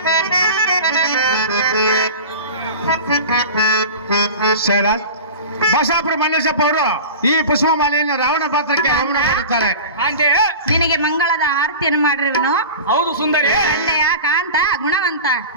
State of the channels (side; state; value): both; inverted; correlation -0.33